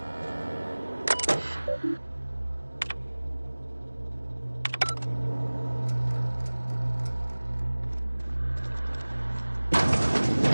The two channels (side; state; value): both; inverted; correlation -1.00